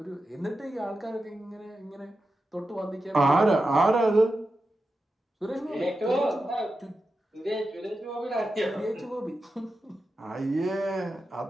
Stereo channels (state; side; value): normal; both; correlation 0.91